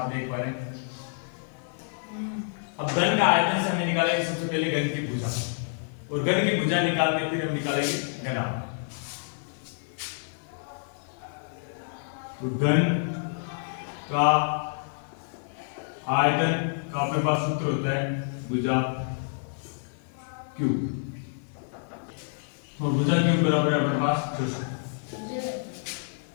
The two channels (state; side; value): silent; right; 56 dB below the other